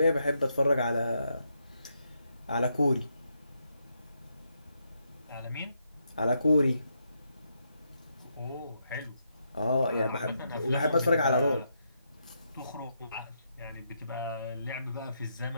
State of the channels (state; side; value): inverted; both; correlation -0.80